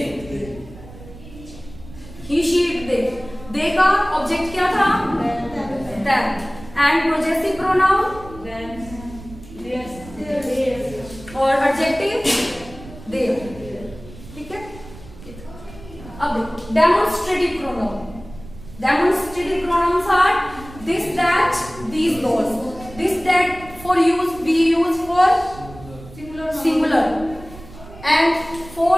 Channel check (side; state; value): right; noise; rumble, 17 dB below the sound